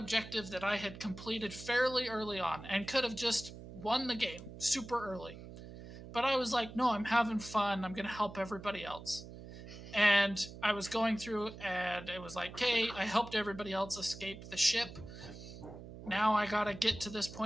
that I had completed fairly early on and could have just won the game super early. But I was like, no, I'm having fun. I'm going to help everybody else. And I was going through and it was like, okay, I helped everybody else escape the ship. Now I got to get to this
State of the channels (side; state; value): right; noise; hum, 13 dB below the sound